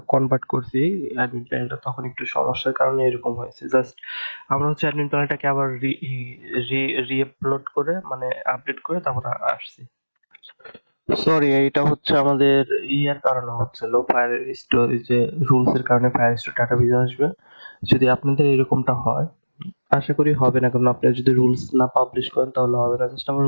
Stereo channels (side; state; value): both; inverted; correlation -1.00